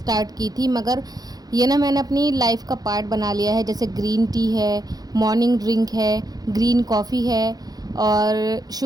की थी, मगर ये ना मैंने अपनी लाइफ का पार्ट बना लिया है। जैसे ग्रीन टी है, मॉर्निंग ड्रिंक है, ग्रीन कॉफ़ी है, और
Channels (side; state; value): left; late; 0.19 ms